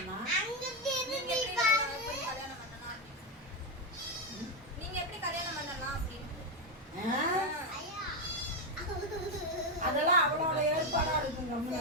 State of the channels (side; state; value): both; normal; correlation 0.06